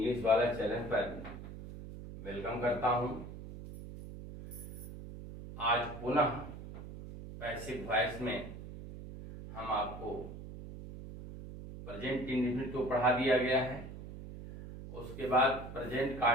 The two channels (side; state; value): right; noise; hum, 11 dB below the sound